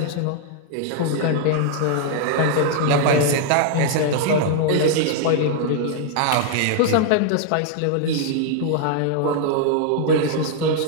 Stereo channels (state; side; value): different; both; correlation 0.00